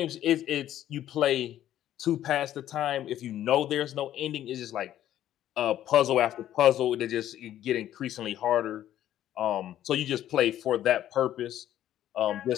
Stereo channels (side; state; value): right; quieter; 12.1 dB